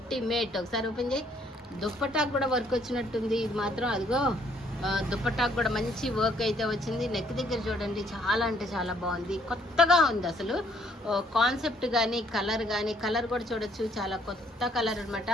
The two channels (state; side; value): normal; both; correlation 0.66